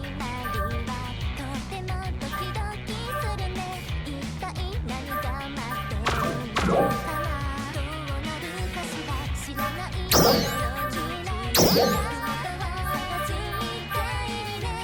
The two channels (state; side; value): identical; both; correlation 1.00